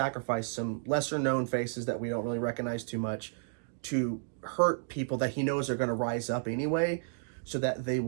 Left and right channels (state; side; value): silent; left; digital silence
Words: some lesser-known faces that we don't really recognize too much to hurt people that he knows are going to rise up anyway so that they